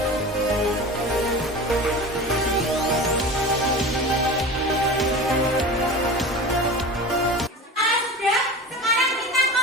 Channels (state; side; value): normal; both; correlation 0.32